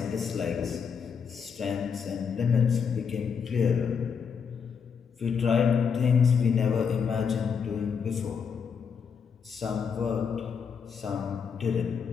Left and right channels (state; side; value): quieter; right; 6.5 dB